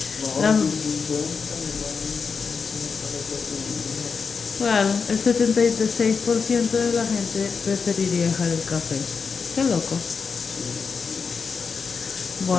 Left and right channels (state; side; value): quieter; right; 5.4 dB